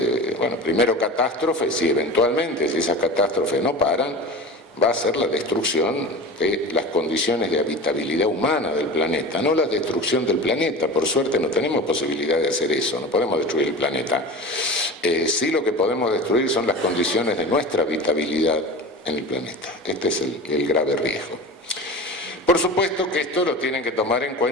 primero catástrofes y eventualmente, si esas catástrofes no paran, va a ser la destrucción de las condiciones de habitabilidad humana del planeta, no la destrucción del planeta. Por suerte no tenemos posibilidad de hacer eso, no podemos destruir el planeta. Sí, lo que podemos destruir son las condiciones de nuestra habitabilidad en el planeta. Este es el grave riesgo. Por supuesto que esto lo tienen que tomar en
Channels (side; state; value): both; normal; correlation 0.32